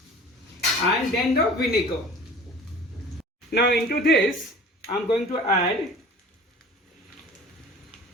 and then the vinegar. Now into this I am going to add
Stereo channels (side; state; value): both; normal; correlation 0.43